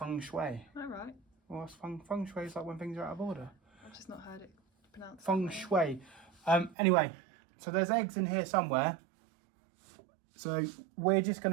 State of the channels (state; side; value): drops out; left; at 6.8 s